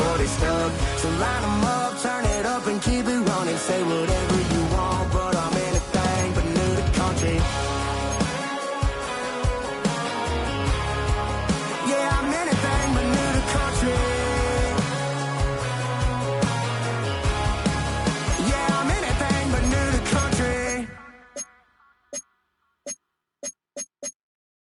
stuck. So line them up, turn it up and keep it running. Say whatever you want, but I'm anything but new to country. Yeah, I'm anything but new to country. Yeah, I'm anything but new to country.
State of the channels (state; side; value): identical; both; correlation 1.00